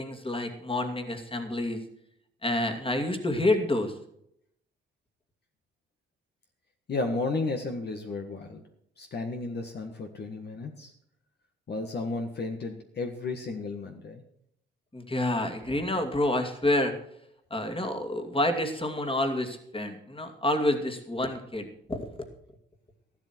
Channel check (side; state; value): both; normal; correlation 0.57